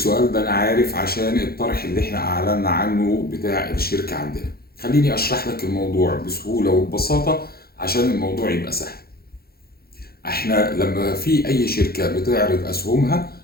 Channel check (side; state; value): right; late; 0.45 ms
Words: ده انا عارف عشان الطرح اللي احنا اعلنا عنه بتاع الشركه عندنا. خليني اشرح لك الموضوع بسهوله وببساطه عشان الموضوع يبقى سهل. احنا لما في اي شركه بتعرض اسهمها